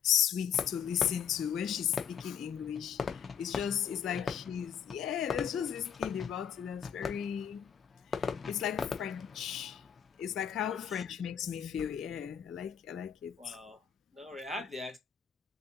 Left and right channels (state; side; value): quieter; right; 8.1 dB